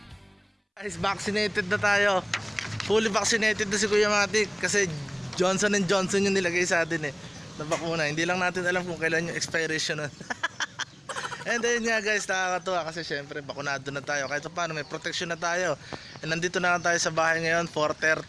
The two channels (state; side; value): identical; both; correlation 1.00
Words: Guys, vaccinated na tayo. Fully vaccinated na si Kuya Matic kasi Johnson & Johnson yung nilagay sa atin eh na bakuna. Hindi lang natin alam kung kailan yung expiration nun. And then nga guys, nakakatuwa kasi syempre bakunado na tayo. Kahit paano may protection na tayo. And nandito na tayo sa bahay ngayon,